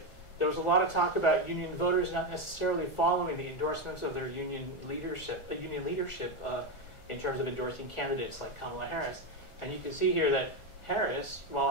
There was a lot of talk about union voters not necessarily following the endorsements of their union leadership in terms of endorsing candidates like Kamala Harris. And you can see here that Harris,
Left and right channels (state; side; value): late; right; 1.5 ms